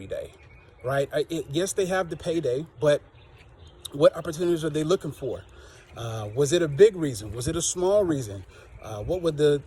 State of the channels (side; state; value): both; identical; correlation 1.00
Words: day, right? Yes, they have the payday, but what opportunities are they looking for? Was it a big reason? Was it a small reason? What would